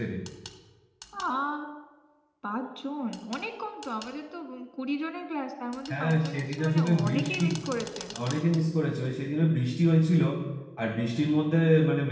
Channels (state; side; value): identical; both; correlation 1.00